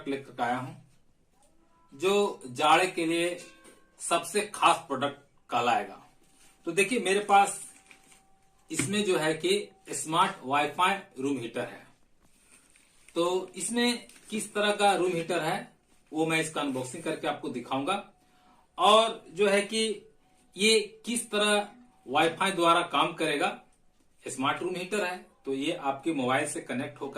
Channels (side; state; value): both; identical; correlation 1.00